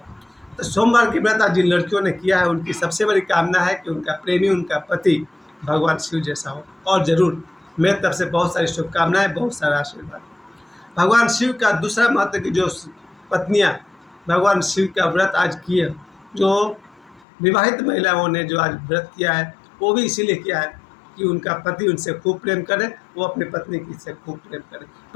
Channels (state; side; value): drops out; right; at 17.2 s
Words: तो सोमवार की व्रत आज जिन लड़कियों ने किया है, उनकी सबसे बड़ी कामना है कि उनका प्रेमी, उनका पति भगवान शिव जैसा हो। और ज़रूर मेरी तरफ से बहुत सारी शुभकामनाएं, बहुत सारा आशीर्वाद। भगवान शिव का दूसरा महत्व की जो पत्नियां भगवान शिव का व्रत आज किए, जो विवाहित महिलाओं ने जो आज व्रत किया है, वो भी इसीलिए किया है कि उनका पति उनसे खूब प्रेम करे, वो अपनी पत्नी की से खूब प्रेम करे।